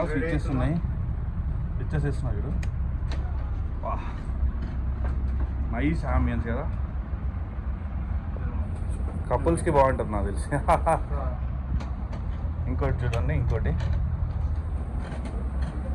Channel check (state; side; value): identical; both; correlation 1.00